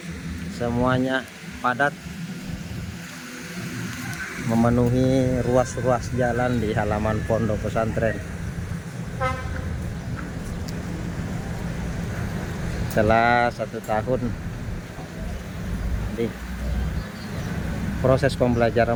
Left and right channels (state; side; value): identical; both; correlation 1.00